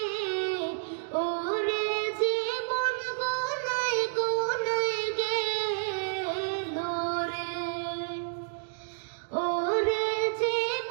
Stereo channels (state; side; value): silent; left; digital silence